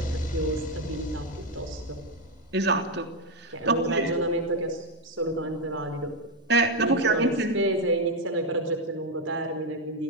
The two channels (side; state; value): both; normal; correlation 0.05